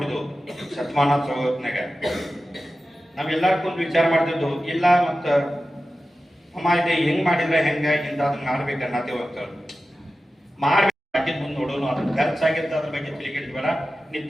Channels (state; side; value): normal; both; correlation 0.94